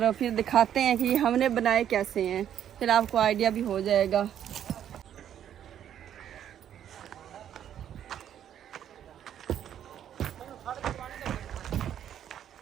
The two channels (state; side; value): quieter; left; 10.0 dB